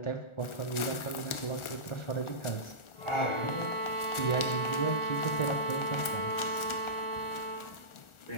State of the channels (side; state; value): right; late; 1.4 ms